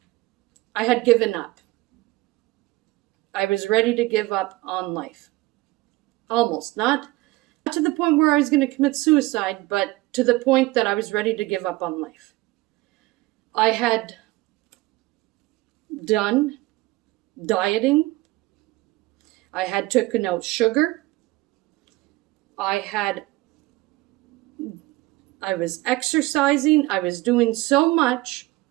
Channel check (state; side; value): quieter; left; 19.8 dB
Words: I had given up. I was ready to give up on life. Almost. Not to the point where I was going to commit suicide, but to the point that I was ready to give up on life. I had done dieting. I had taken out sugar. I was exercising. I was doing so much